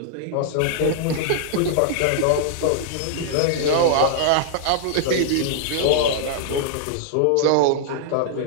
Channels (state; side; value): different; both; correlation -0.01